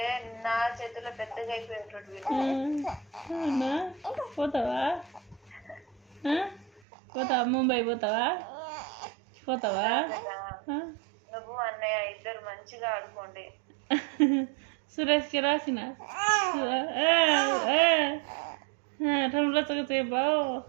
నా చేతిలో పెద్దగా అయిపోయేటట్టు. పోతావా? పోతావా? ముంబై పోతావా? నువ్వు అన్నయ్య ఇద్దరు మంచిగా ఆడుకోండి. సురేష్కి రాసిన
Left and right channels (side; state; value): left; drops out; at 6.8 s